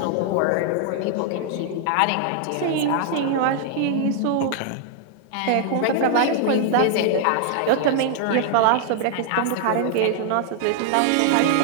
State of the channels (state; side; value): different; both; correlation -0.01